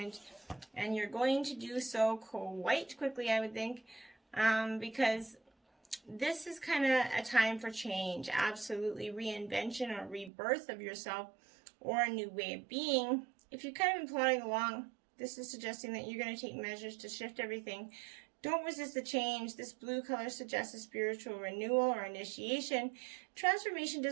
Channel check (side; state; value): left; drops out; at 10.3 s